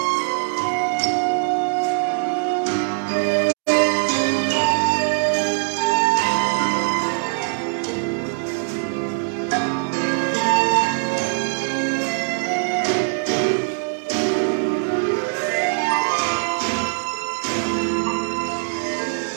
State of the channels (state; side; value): silent; left; digital silence